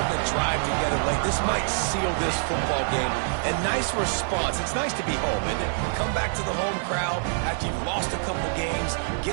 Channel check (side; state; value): left; silent; digital silence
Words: the drive together late. This might seal this football game. And nice response. It's nice to be home, isn't it? Come back to the home crowd after you've lost a couple games.